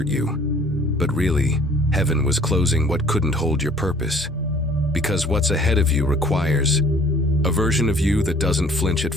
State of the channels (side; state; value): both; normal; correlation 0.54